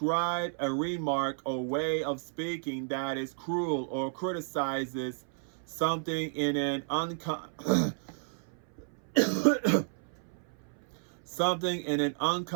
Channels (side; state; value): left; silent; 57 dB below the other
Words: a remark or way of speaking that is cruel or criticizes something in an something in an